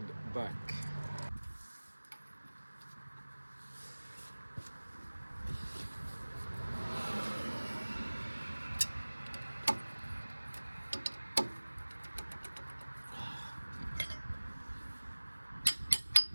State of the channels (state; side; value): inverted; both; correlation -1.00